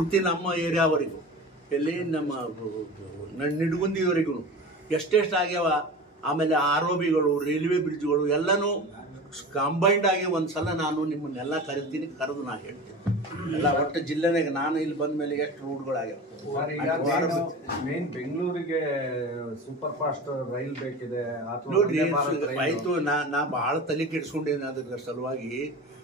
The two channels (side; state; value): both; normal; correlation 0.33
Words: ನಮ್ಮ ಏರಿಯಾವರೆಗೂ, ಎಲ್ಲಿ ನಮ್ಮ ನಿಡ್ಗುಂದಿವರೆಗೂ ಎಷ್ಟೆಷ್ಟು ಆಗ್ಯಾವ. ಆಮೇಲೆ ಆರೋಬಿಗಳು, ರೈಲ್ವೆ ಬ್ರಿಡ್ಜ್ಗಳು ಎಲ್ಲನೂ ಕಂಬೈಂಡ್ ಆಗಿ ಒಂದ್ಸಲ ನಾನು ನಿಮ್ಮನ್ನೆಲ್ಲ ಕರಿತೀನಿ, ಕರೆದು ನಾ ಹೇಳ್ತೀನಿ ಎಲ್ಲ ಒಟ್ಟು ಜಿಲ್ಲೆನಾಗ. ನಾನು ಇಲ್ಲಿ ಬಂದ ಮೇಲೆ ಎಷ್ಟು ರೋಡ್ಗಳಾಗ್ಯಾವ. ಮೇನ್ ಬೆಂಗಳೂರಿಗೆ ಸೂಪರ್ ಫಾಸ್ಟ್ ರೈಲ್ ಬೇಕಿದೆ ನೋಡ್ರಿ. ಆಯ್ತು, ನಾ ಬಹಳ ತಲೆ ಕೆಡ್ಸ್ಕೊಂಡೇನೆ ಅದ್ರ ಸಲುವಾಗಿ.